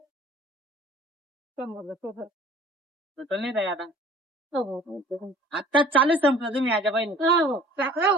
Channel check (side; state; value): both; normal; correlation 0.49